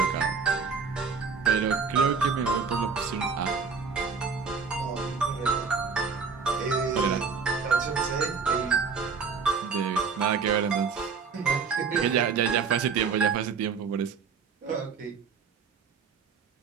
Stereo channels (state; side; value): quieter; left; 5.4 dB